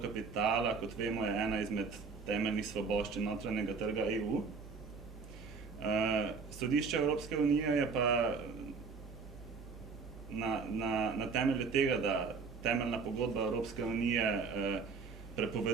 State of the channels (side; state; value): left; quieter; 5.0 dB